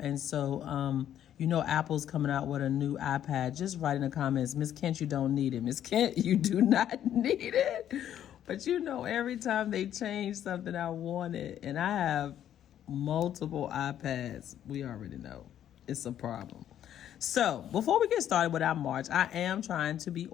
so, you know Apple's coming out with a new iPad. Just write in the comments, Miss Kent, you don't need it. Miss Kent, you do not need it. But you know, every time they change something, I want it. And I have multiple iPads. We already know it's a problem. So before we get started with our March, I am trying to be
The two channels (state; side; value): quieter; right; 10.7 dB